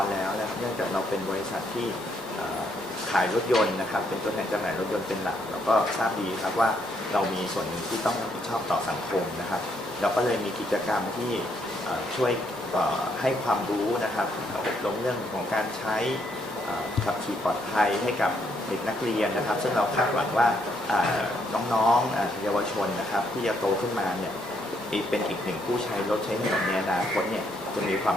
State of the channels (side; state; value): both; normal; correlation 0.73